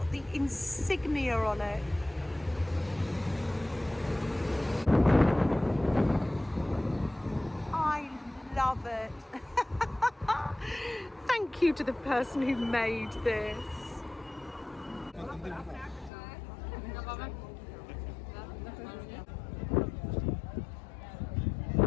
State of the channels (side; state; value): right; drops out; at 16.1 s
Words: the insignia on it. I love it. Thank you to the person who made this.